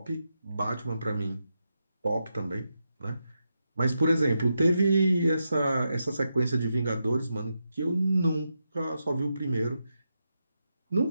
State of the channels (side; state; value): both; inverted; correlation -0.86